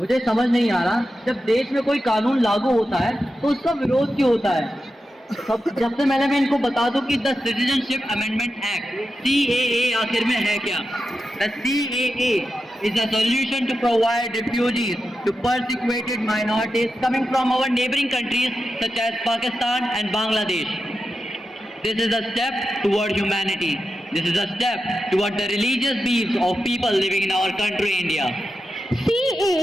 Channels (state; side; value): normal; both; correlation 0.90